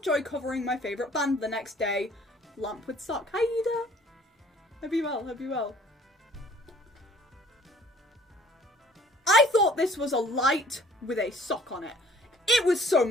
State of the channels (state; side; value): normal; both; correlation 0.54